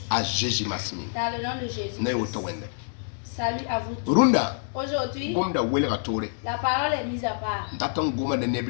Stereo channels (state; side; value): silent; right; 60 dB below the other